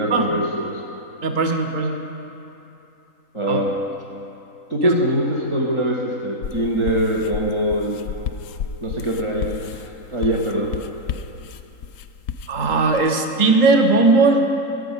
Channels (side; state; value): right; late; 3.8 ms